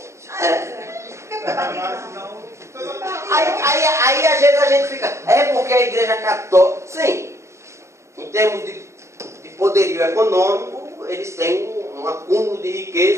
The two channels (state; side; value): late; left; 0.14 ms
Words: É. Mas não. Aí às vezes a gente fica, é porque a igreja católica, sim, em termos de poderio econômico, eles têm um acúmulo de